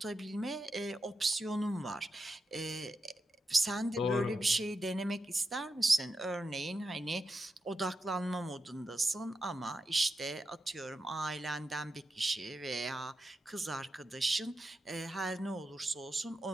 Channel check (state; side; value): normal; both; correlation 0.88